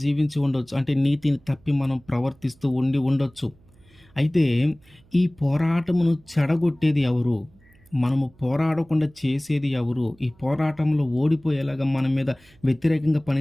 ఉండొచ్చు. అంటే నీతిని తప్పి మనం ప్రవర్తిస్తూ ఉండొచ్చు. అయితే ఈ పోరాటమును చెడగొట్టేది ఎవరు? మనము పోరాడకుండా చేసేది ఎవరు? ఈ పోరాటంలో ఓడిపోయేలాగా మన మీద వ్యతిరేకంగా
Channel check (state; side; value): noise; right; hum, 29 dB below the sound